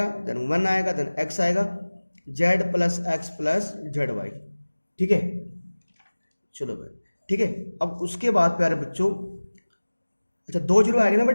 देन 1 आएगा, देन x आएगा, z plus X plus Z Y. ठीक है, चलो भाई, ठीक है। अब उसके बाद प्यारे बच्चों, अच्छा 2 जीरो आ गए ना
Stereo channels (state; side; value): inverted; both; correlation -1.00